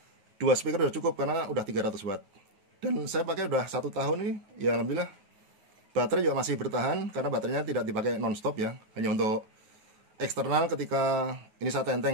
2 speaker udah cukup karena udah 300 watt. Dan saya pakai udah 1 tahun ini, ya alhamdulillah. Baterai juga masih bertahan karena baterainya tidak dipakai non-stop ya, hanya untuk eksternal ketika ini saya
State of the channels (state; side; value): late; left; 9.4 ms